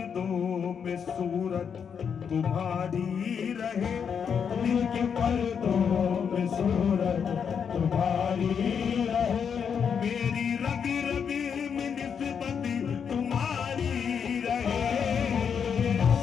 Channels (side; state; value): right; quieter; 7.0 dB